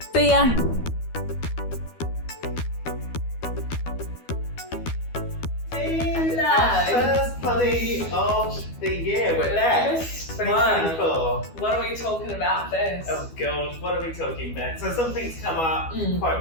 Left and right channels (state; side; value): late; right; 12 ms